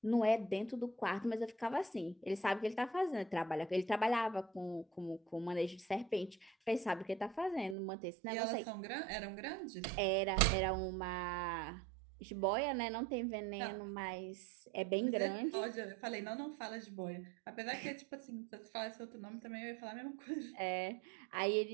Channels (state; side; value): drops out; left; at 7.8 s